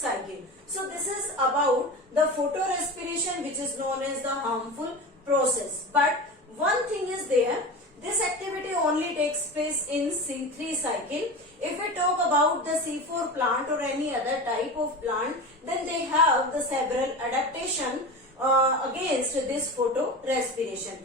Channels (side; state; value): both; normal; correlation 0.28